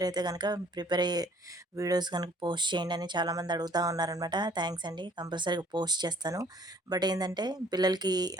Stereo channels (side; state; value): both; normal; correlation 0.58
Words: అయితే గనక ప్రిపేర్ అయ్యే వీడియోస్ గనుక పోస్ట్ చేయండి అని చాలామంది అడుగుతా ఉన్నారనమాట. థ్యాంక్స్ అండి. కంపల్సరీగా పోస్ట్ చేస్తాను. బట్ ఏందంటే పిల్లలకి